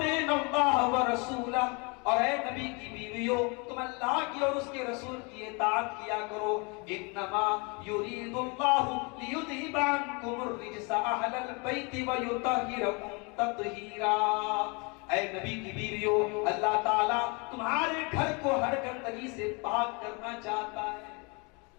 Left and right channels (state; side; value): quieter; right; 31.0 dB